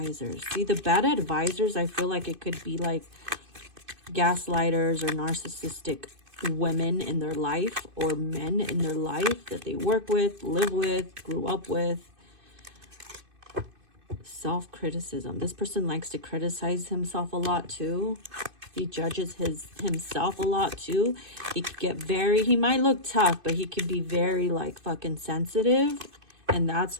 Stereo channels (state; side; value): late; left; 2.5 ms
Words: See, the bad advisors, I feel like it could be like gaslighters or narcissistic women in their life or men in their life that they work with, live with, grew up with. Self-criticism. This person likes to criticize himself a lot too. He judges himself a lot too. He could get very, he might look tough, but he could be very like fucking sensitive. And that's